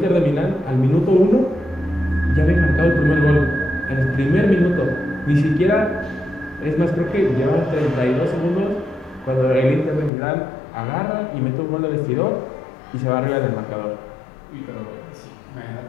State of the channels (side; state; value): right; drops out; at 10.1 s